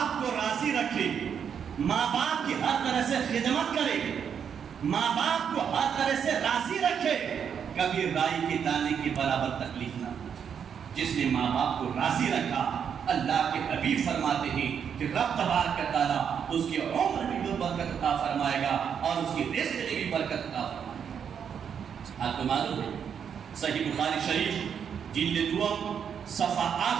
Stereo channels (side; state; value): left; quieter; 7.6 dB